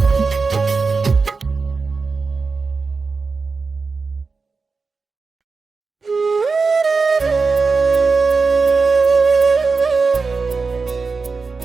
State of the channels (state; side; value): quieter; left; 4.4 dB